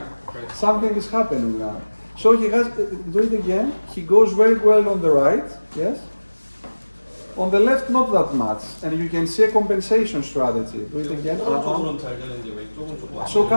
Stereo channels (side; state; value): both; inverted; correlation -1.00